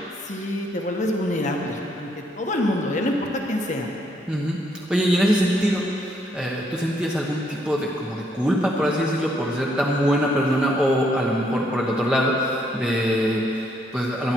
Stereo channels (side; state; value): both; normal; correlation 0.72